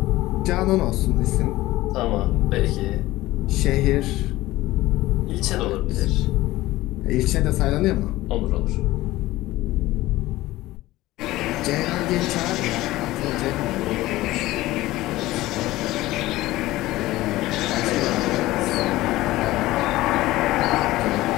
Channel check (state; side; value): quieter; right; 17.4 dB